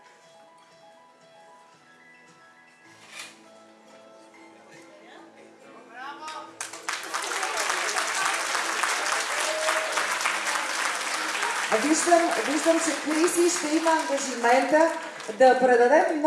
Виждам, че Криси ще има ангажимента да предаде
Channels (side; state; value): both; identical; correlation 1.00